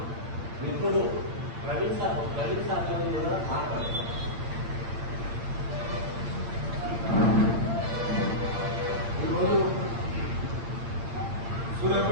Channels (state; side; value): late; left; 8.7 ms